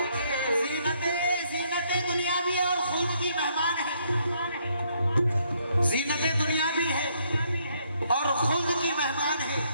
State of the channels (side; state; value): both; inverted; correlation -0.71